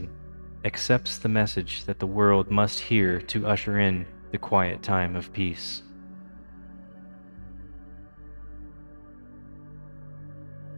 accepts the message that the world must hear to usher in the quiet time of peace.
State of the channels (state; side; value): inverted; both; correlation -1.00